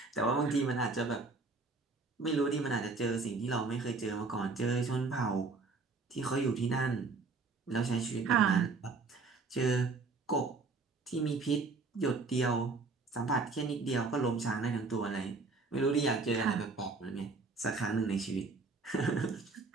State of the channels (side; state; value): left; quieter; 4.1 dB